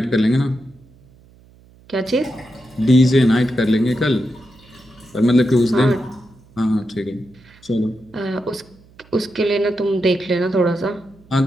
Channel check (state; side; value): noise; right; hum, 27 dB below the sound